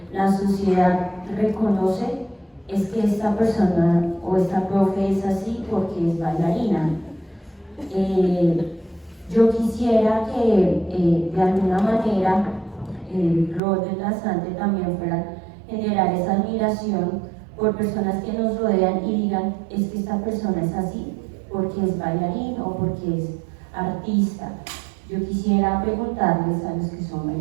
la sociedad reconoce es que esta persona o esta profe es así porque es bailarina. Yo quisiera que de alguna manera el rol del danzante también fuera generar esa admiración por personas que nos rodean y digan es que esta persona es así porque es bailarín o porque es artista. Yo quisiera preguntarles a los que son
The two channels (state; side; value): drops out; left; at 13.6 s